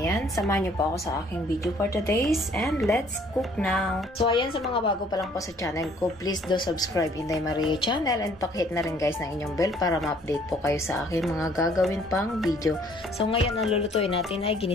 samahan niyo po ako sa aking video for today's and let's cook now. So, ayan, sa mga bago pa lang po sa channel ko, please do subscribe Inday Maria channel and pakihit na rin guys ng inyong bell para ma-update po kayo sa aking mga gagawin pang video. So, ngayon ang lulutuin natin ay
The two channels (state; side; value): normal; both; correlation 0.60